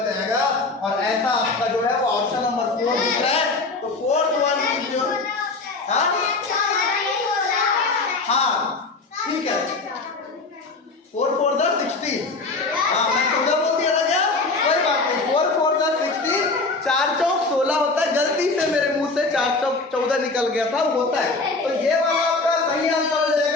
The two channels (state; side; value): quieter; right; 3.6 dB